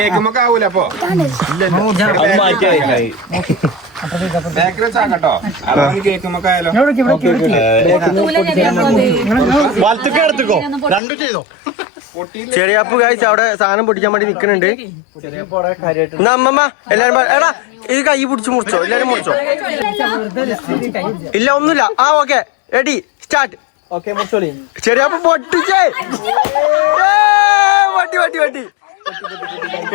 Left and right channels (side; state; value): right; drops out; at 11.0 s